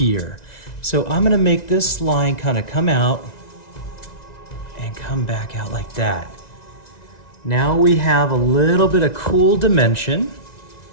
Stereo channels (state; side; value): late; right; 1.9 ms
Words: So I'm going to make this line kind of come out and come back out like that. Now we have a little bit of cool dimension.